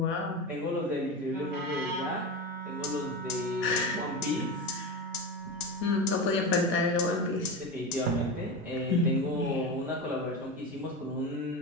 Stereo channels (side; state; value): both; normal; correlation 0.23